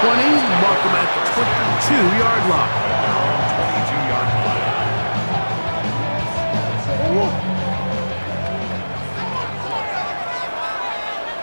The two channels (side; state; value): both; inverted; correlation -1.00